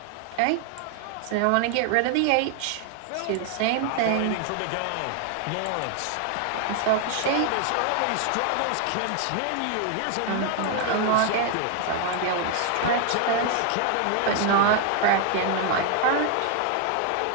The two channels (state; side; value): different; both; correlation 0.00